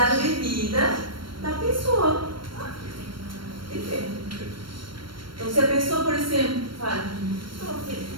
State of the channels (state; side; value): late; left; 0.73 ms